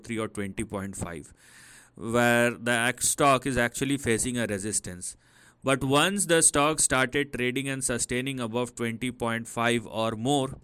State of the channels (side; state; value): both; identical; correlation 1.00